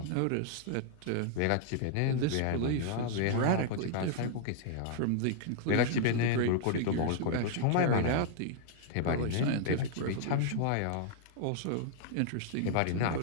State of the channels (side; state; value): both; different; correlation -0.01